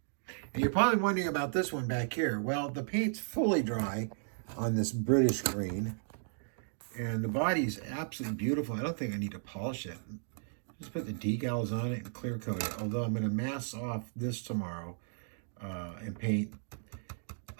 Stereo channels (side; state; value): left; silent; digital silence